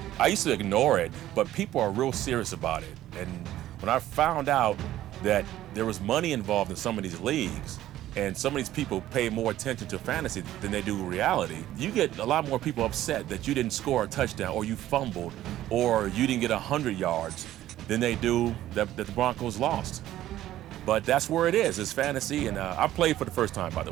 I used to ignore it, but people are real serious about it. And when I found out that there was money involved in some of these leagues, and some of these people pay more attention to fantasy than they do reality, you get a lot more people upset that you didn't score a touchdown, or you fumbled, or you didn't get 100 yards than they do that the Broncos lost. But that's where it is. It's fantasy, and I played for the first time, by the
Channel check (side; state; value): left; quieter; 13.7 dB